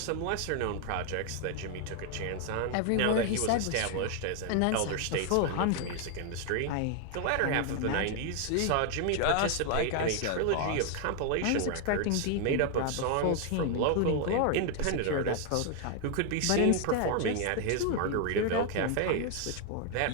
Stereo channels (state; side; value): different; both; correlation 0.00